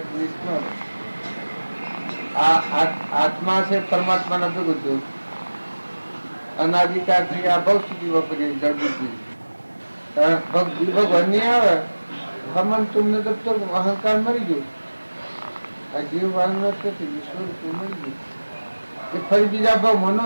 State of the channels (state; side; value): inverted; both; correlation -1.00